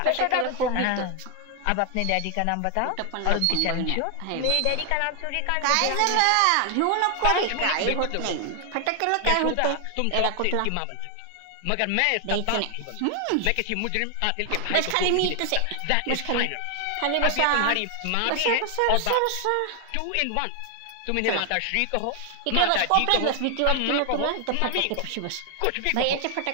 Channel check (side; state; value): both; different; correlation 0.00